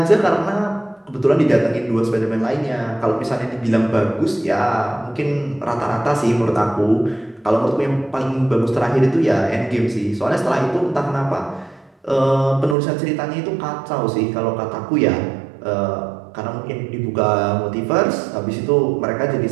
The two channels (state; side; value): drops out; left; at 12.8 s